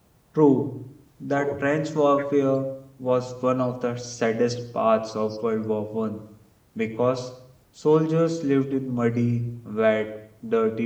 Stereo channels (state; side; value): identical; both; correlation 1.00